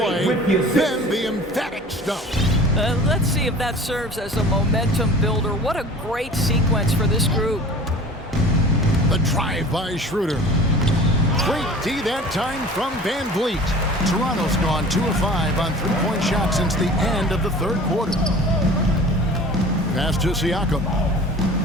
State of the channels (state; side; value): normal; both; correlation 0.43